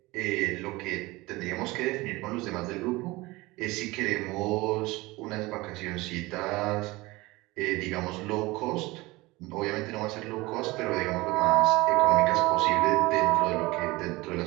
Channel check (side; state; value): left; quieter; 21.4 dB